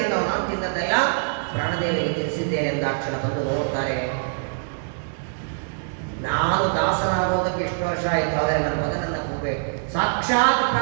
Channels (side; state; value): left; silent; 60 dB below the other